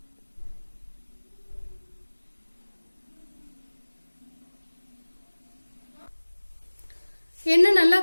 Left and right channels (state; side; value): inverted; both; correlation -1.00